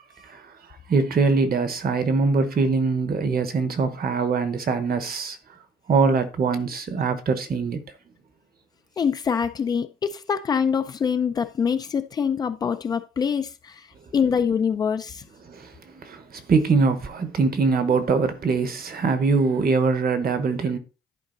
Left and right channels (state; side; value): normal; both; correlation 0.60